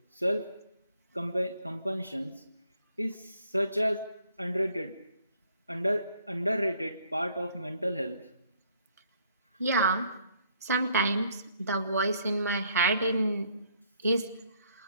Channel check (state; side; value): inverted; both; correlation -0.66